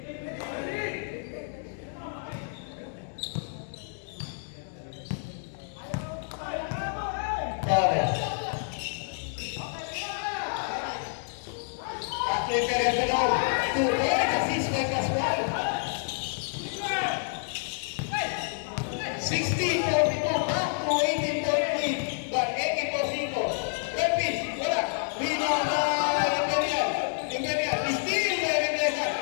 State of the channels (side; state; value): right; silent; digital silence